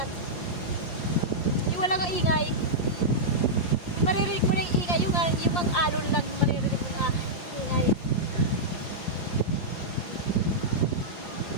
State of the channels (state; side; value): late; right; 4.8 ms